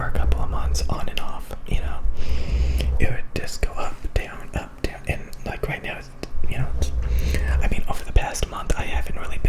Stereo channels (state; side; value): identical; both; correlation 1.00